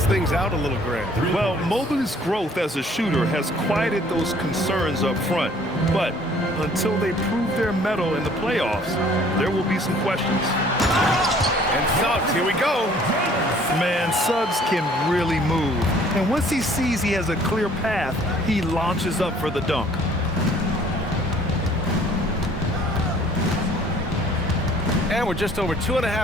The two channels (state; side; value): normal; both; correlation 0.56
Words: things out a little, Grant. Well, Mobley's growth as a shooter has quieted those concerns up front. But until they prove their mettle in the playoffs, there will be some questions. And Suggs, here we go. Man, Suggs can really move. And once he sees he has a clear path, he launches up for the dunk. And we're just over